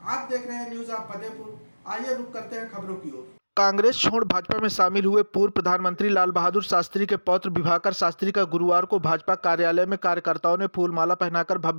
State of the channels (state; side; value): inverted; both; correlation -1.00